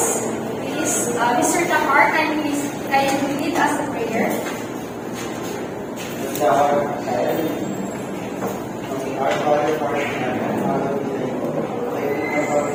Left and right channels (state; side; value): identical; both; correlation 1.00